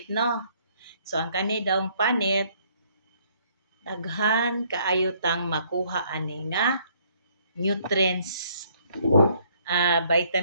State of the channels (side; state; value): both; inverted; correlation -0.65